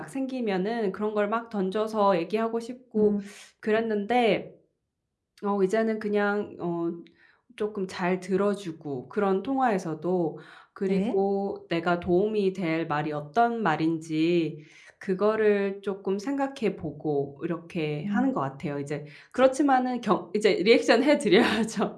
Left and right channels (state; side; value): identical; both; correlation 1.00